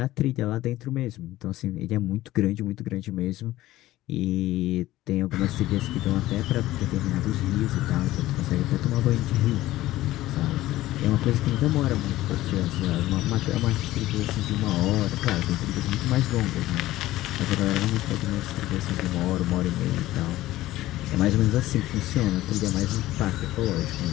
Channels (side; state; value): right; quieter; 16.0 dB